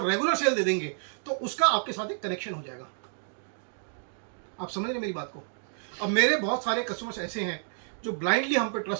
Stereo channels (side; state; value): left; silent; digital silence